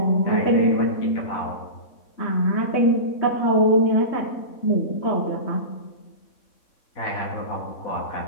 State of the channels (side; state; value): right; late; 3.6 ms